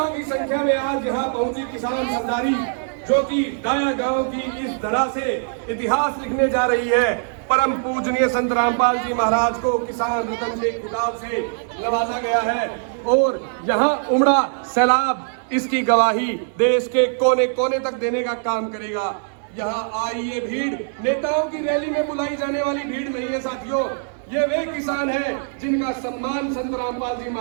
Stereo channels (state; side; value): silent; left; 64 dB below the other